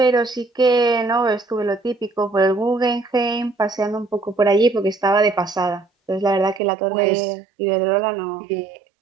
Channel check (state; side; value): drops out; left; at 6.6 s